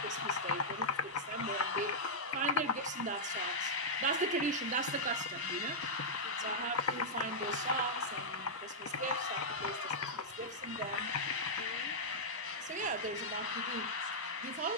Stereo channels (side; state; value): both; normal; correlation -0.07